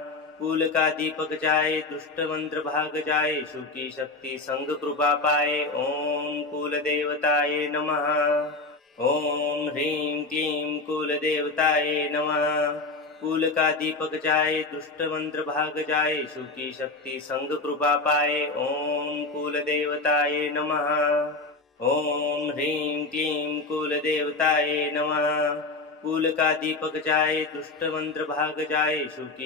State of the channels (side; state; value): right; quieter; 3.4 dB